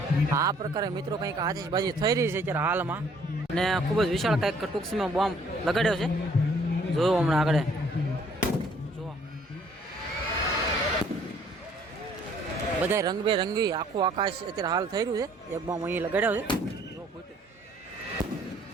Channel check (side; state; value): both; normal; correlation 0.61